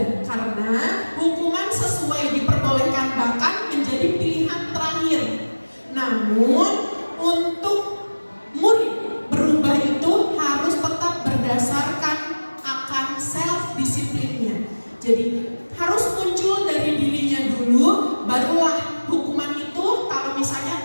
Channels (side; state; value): both; inverted; correlation -1.00